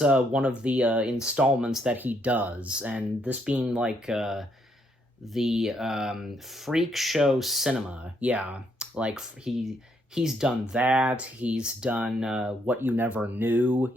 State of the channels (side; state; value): both; normal; correlation 0.73